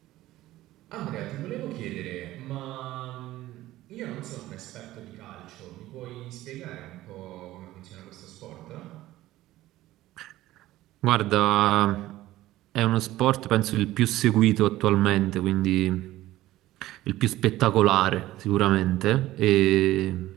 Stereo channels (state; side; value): quieter; left; 15.8 dB